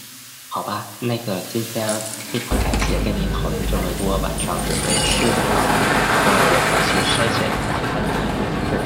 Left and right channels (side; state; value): both; identical; correlation 1.00